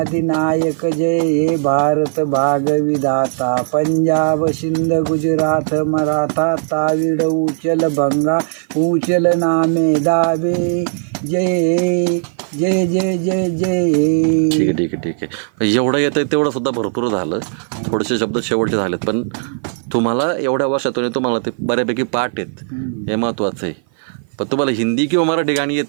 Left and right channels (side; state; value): left; silent; 55 dB below the other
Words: जय हे भारत भाग विधाता. पंजाब सिंध गुजरात मराठा ताविड उचल भंगा उचल नामे दावे. जय जय जय जय जय. ठीक आहे. एवढं येतं तेवढं सुद्धा भरपूर झालं. थोडेसे शब्द शेवटचे झालेत, पण तुम्हाला एवढ्या वर्षातून तुम्हाला ते बऱ्यापैकी पाठ आहेत, हे महत्त्वाचं आहे. पण तुम्हाला हिंदी किंवा मराठी गाणी